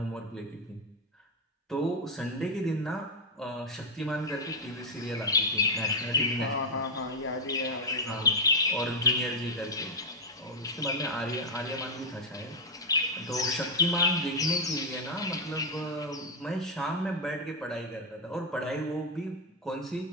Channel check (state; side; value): normal; both; correlation 0.00